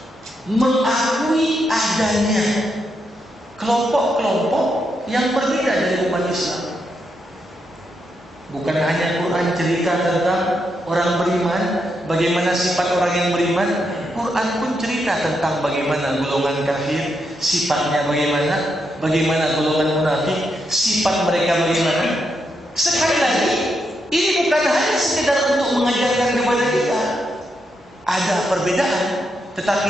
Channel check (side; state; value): both; normal; correlation 0.82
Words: mengakui adanya kelompok-kelompok yang berbeda dari umat Islam. Bukan hanya Quran cerita tentang orang beriman, bagaimana sifat orang yang beriman, Quran pun cerita tentang bagaimana golongan kafir, sifatnya bagaimana golongan munafik, sifat mereka bagaimana. Sekali lagi, ini bukan hanya sekedar untuk mengajarkan kepada kita ada perbedaan,